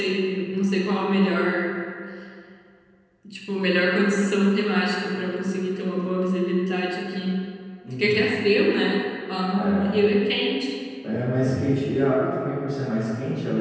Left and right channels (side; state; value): both; identical; correlation 1.00